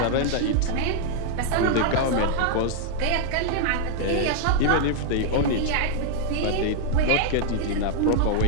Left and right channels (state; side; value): different; both; correlation 0.00